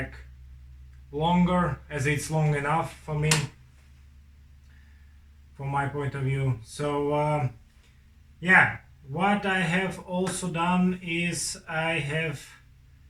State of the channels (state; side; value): identical; both; correlation 1.00